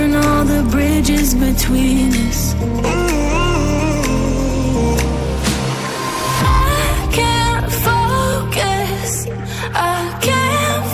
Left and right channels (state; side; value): identical; both; correlation 1.00